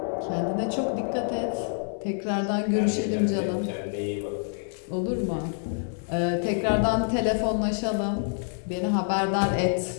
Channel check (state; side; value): silent; right; 60 dB below the other